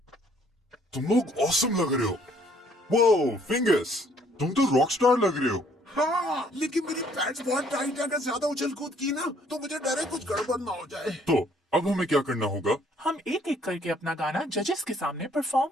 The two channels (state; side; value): normal; both; correlation 0.62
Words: तुम लोग ऑसम लग रहे हो। वो फिंगर्स, तुम तो रॉक स्टार लग रहे हो। हाँ, लेकिन मेरी पैड्स बहुत टाइट है। अगर ज्यादा उछल कूद की ना तो मुझे डर है कुछ गड़बड़ ना हो जाए। तो अब हमें क्या करना होगा? हम एक एक करके अपना गाना जजेस के सामने परफॉर्म